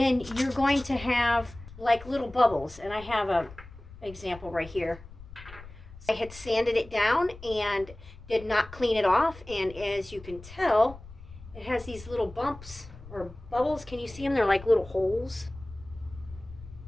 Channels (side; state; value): left; noise; rumble, 17 dB below the sound